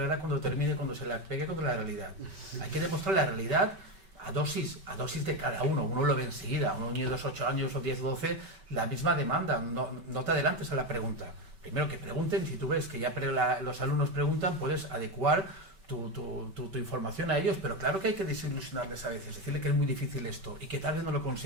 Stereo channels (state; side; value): late; left; 5.2 ms